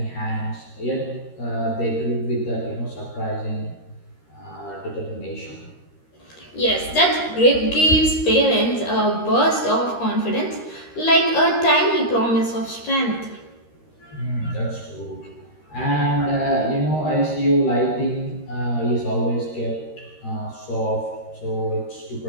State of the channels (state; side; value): late; right; 13 ms